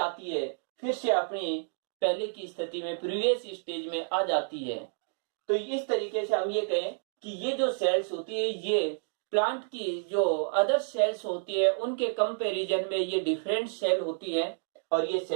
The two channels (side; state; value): left; silent; digital silence